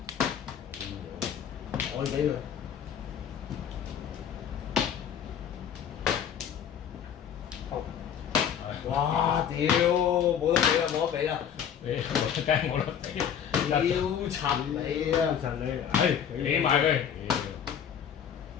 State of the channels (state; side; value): quieter; right; 8.5 dB